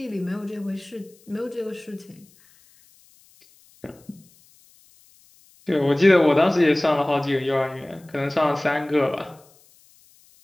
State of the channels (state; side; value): noise; left; hiss, 30 dB below the sound